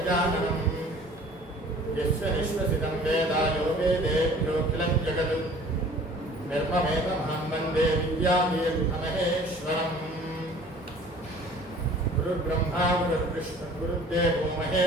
यस्य निःश्वसितं वेदायो वेदेभ्योऽखिलं जगत् निर्ममेतमहं वन्दे विद्यादेवमहेश्वरम्। गुरुर्ब्रह्मा गुरुर्विष्णुः गुरुर्देवो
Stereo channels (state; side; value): normal; both; correlation 0.49